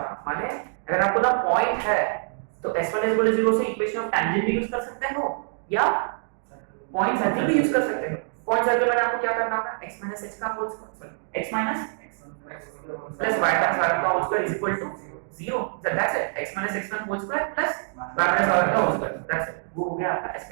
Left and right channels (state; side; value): silent; left; digital silence